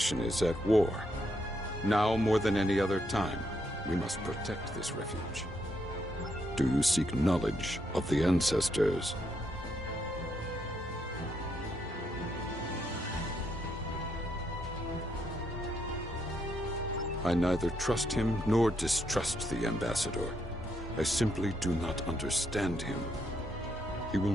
is at war. Now more than any other time, we must protect this refuge. Do you seek knowledge of the ancestors? I neither trust him nor distrust the ambassador. I simply do not understand him. He will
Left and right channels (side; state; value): both; normal; correlation 0.77